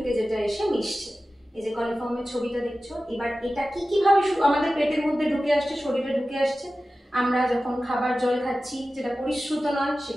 যেটা এসে মিশছে। এই যে কলিফর্মের ছবিটা দেখছো, এবার এটা কি কিভাবে আমাদের পেটের মধ্যে ঢুকে আসছে, শরীরে ঢুকে আসছে? আমরা যখন খাবার জল খাচ্ছি যেটা পরিশ্রুত নয়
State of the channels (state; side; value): normal; both; correlation 0.95